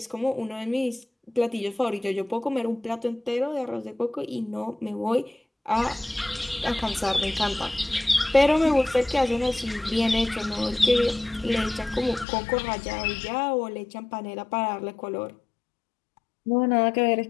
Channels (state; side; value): drops out; right; at 12.2 s